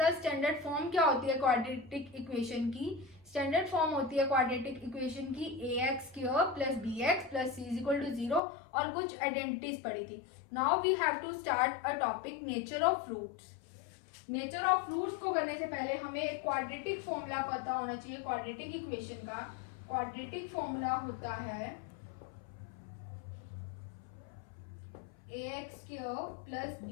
था स्टैंडर्ड फॉर्म क्या होती है क्वाड्रेटिक इक्वेशन की। स्टैंडर्ड फॉर्म होती है क्वाड्रेटिक इक्वेशन की ax² plus bx plus c is equal to 0 और कुछ आइडेंटिटीज पढ़ी थी। Now we have to start a topic nature of roots. Nature of roots को करने से पहले हमें एक क्वाड्रेटिक फॉर्मूला पता होना चाहिए। क्वाड्रेटिक इक्वेशन का क्वाड्रेटिक फॉर्मूला होता है ax² plus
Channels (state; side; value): drops out; right; at 8.4 s